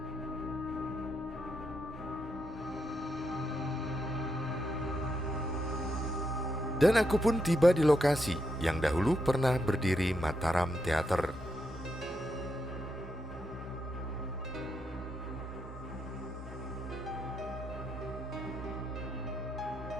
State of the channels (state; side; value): normal; both; correlation 0.81